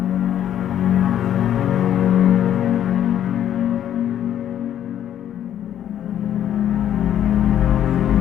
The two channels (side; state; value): right; quieter; 10.6 dB